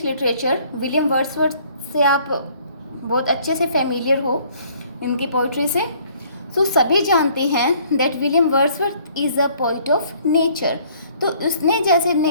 literature, William Wordsworth से आप बहुत अच्छे से familiar हो इनकी poetry से. सो सभी जानते हैं that William Wordsworth is a poet of nature. तो उसने जैसे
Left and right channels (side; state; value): both; inverted; correlation -0.59